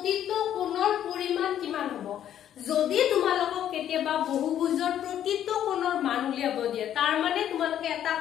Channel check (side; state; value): right; quieter; 10.6 dB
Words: কোণৰ পৰিমাণ কিমান হ'ব? যদি তোমালোকক কেতিয়াবা বহুভুজৰ প্ৰতিটো কোণৰ মান উলিয়াব দিয়ে, তাৰ মানে তোমালোকে এটা